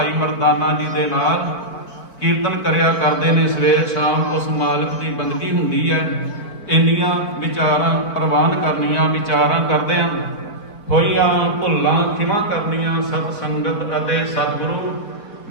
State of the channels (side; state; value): right; late; 4.5 ms